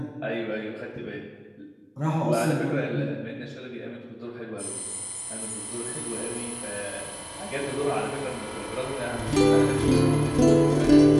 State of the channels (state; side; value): identical; both; correlation 1.00